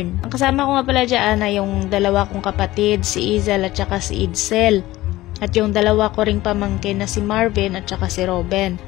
Ang kasama ko nga pala dyan ay yung 2 kong kapatid, si Izel at saka si Idsel. At yung 2 ko ring pamangkin na si Marvin at saka si Robin,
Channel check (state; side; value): quieter; right; 17.0 dB